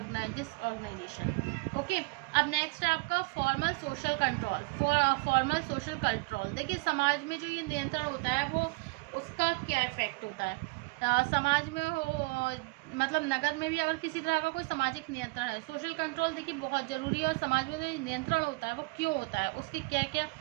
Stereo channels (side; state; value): left; quieter; 26.6 dB